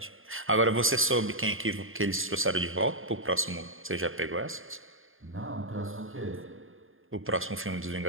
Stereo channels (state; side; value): late; left; 0.59 ms